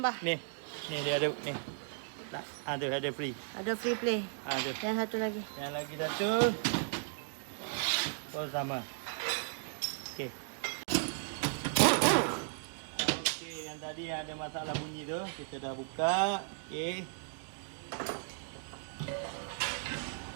Ni dia ada ni. Tak, ada free. Ada free play. Ada. Yang satu lagi. Yang lagi satu. Oh sama. Okey. Okey, yang tadi yang ada masalah bunyi tu, kita dah buka. Okey.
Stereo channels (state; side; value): silent; left; digital silence